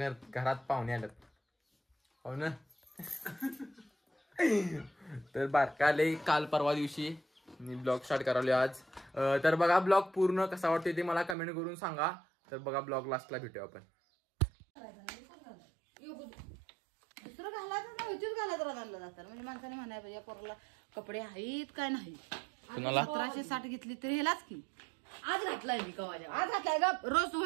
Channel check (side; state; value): left; drops out; at 11.4 s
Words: घरात पाहुणे आलेत. हो ना. तर बारकाले काल परवा दिवशी मी ब्लॉग स्टार्ट करावले आज. तर बघा ब्लॉग पूर्ण कसा वाटतोय ते मला कमेंट करून सांगा. तर बघा ब्लॉग लास्टला भेटूया आपण. दुसरं घालायचं ना, इथेच घालायचं घाललं जातं. म्हणजे माणसाने म्हणाय पाहिजे पोराला कपडे आहेत काय नाही. 1760 घेतली तरी हेलाच की आज घातलाय मी कवाच्या आज घातलाय ग. रोज